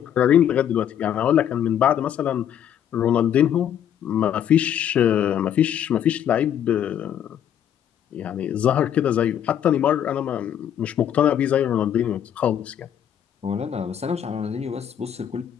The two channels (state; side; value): quieter; right; 9.7 dB